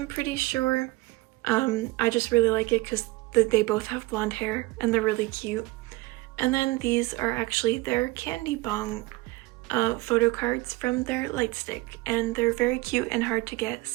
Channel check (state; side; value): quieter; left; 21.4 dB